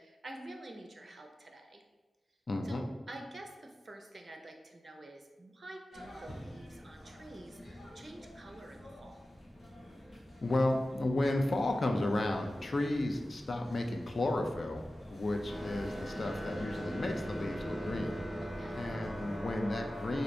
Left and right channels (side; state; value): both; normal; correlation 0.95